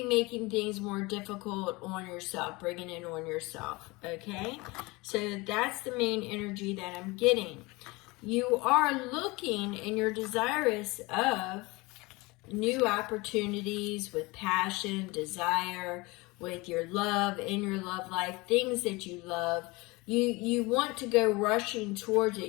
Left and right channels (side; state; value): right; quieter; 23.8 dB